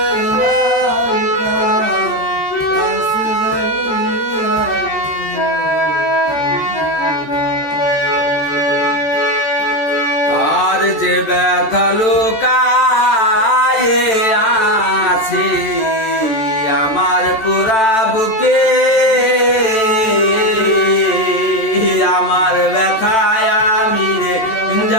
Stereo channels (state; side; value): late; right; 14 ms